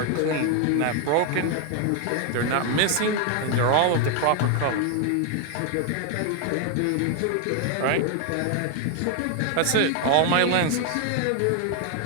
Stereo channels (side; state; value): both; different; correlation 0.01